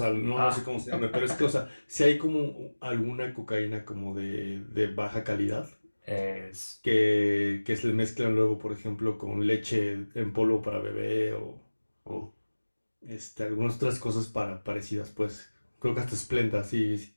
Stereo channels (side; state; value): both; inverted; correlation -1.00